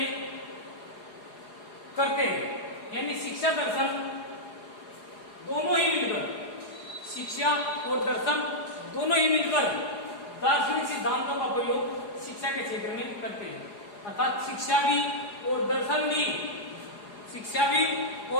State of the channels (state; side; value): late; right; 4.8 ms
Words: करते हैं। यानी शिक्षा दर्शन दोनों ही मिलकर, शिक्षा और दर्शन दोनों ही मिलकर दार्शनिक सिद्धांतों का प्रयोग शिक्षा के क्षेत्र में करते हैं। अर्थात शिक्षा भी और दर्शन भी, शिक्षा भी